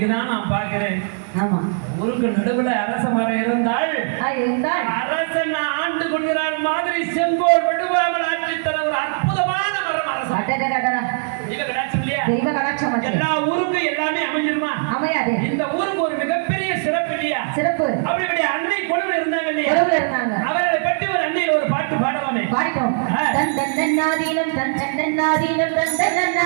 நான் பார்க்கிறேன். ஊருக்கு நடுவுல அரச மரம் இருந்தால் அரசன் ஆண்டு கொள்கிறார் மாதிரி செங்கோல் வடுவாமல் ஆட்சி தர ஒரு அற்புதமான மரம் அரசன். எல்லா ஊருக்கும் எல்லாமே அமைஞ்சிருமா? அமையாது. இந்த ஊருக்கு ஒரு மிகப்பெரிய சிறப்பு இல்லையா? அப்படி அன்னை கொழுவில் இருந்தாங்க இல்லையா? அவர்களை பற்றி ஒரு அன்னையில் ஒரு பாட்டு பாடலாமே. பாடிட்டோம். தந்தன்னாதீனம் தந்தன்னாதீனம்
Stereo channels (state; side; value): silent; left; digital silence